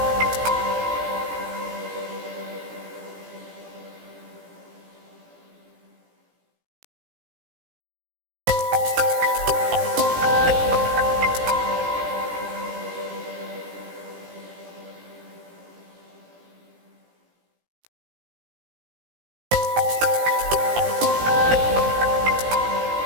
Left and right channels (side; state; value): left; late; 17 ms